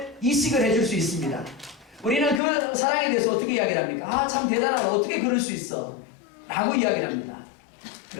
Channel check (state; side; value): drops out; right; at 2.4 s